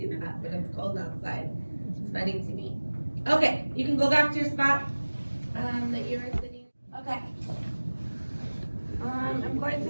do that when it's cold outside. It's funny to me. Okay, you can go back to your spot that you were sitting. Okay. I'm going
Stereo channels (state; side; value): inverted; both; correlation -1.00